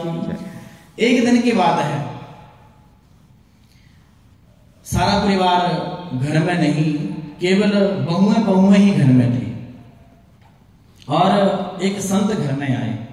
एक दिन की बात है, सारा परिवार घर में नहीं, केवल बहुएं ही घर में थी, और एक संत घर में आए,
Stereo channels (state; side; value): identical; both; correlation 1.00